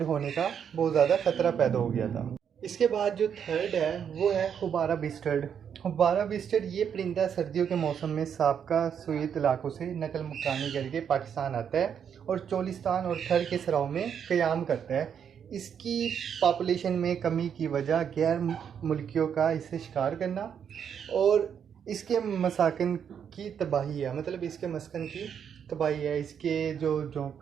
होने का बहुत ज़्यादा ख़तरा पैदा हो गया था। इसके बाद जो थर्ड है वो है हुबारा बिस्टर्ड। हुबारा बिस्टर्ड ये परिंदा सर्दियों के मौसम में साबका सोवियत इलाकों से नकल मकानी करके पाकिस्तान आता है और चोलिस्तान और थर के सराओं में क़याम करता है। इसकी पॉपुलेशन में कमी की वजह गैर मुल्कियों का इसे शिकार करना और इसके मसाकन की तबाही है, मतलब इसके मस्कन की तबाही है। इसके जो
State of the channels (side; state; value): left; quieter; 7.9 dB